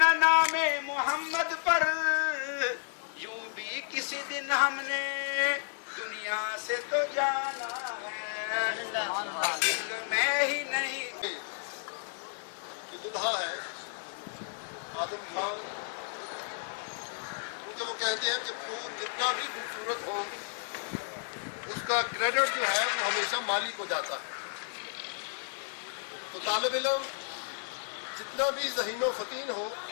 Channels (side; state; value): right; silent; digital silence